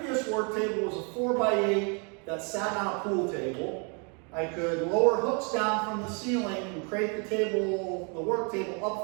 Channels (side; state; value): left; quieter; 35.7 dB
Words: work table was a 4x8 that sat on a pool table. I could lower hooks down from the ceiling and create the work table